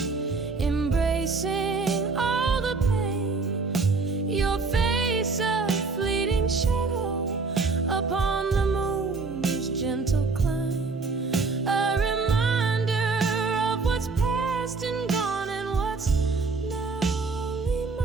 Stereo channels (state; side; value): quieter; left; 4.2 dB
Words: embracing all the pain. Your face a fleeting shadow upon the moon's gentle climb, a reminder of what's past and gone and what's now only